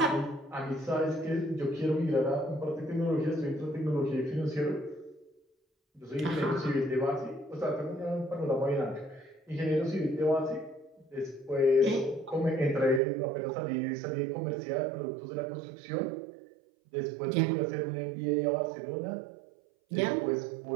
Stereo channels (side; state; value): left; drops out; at 13.0 s